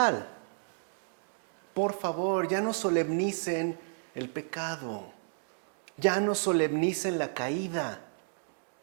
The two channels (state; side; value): silent; left; digital silence